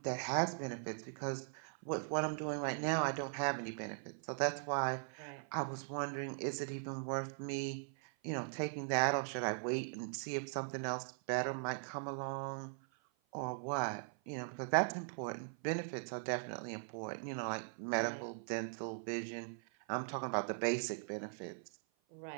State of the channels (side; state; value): left; silent; 51 dB below the other